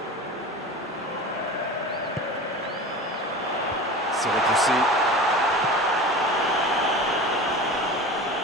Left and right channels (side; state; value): both; normal; correlation 0.33